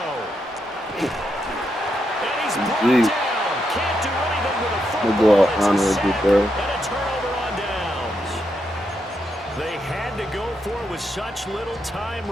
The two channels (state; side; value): normal; both; correlation 0.82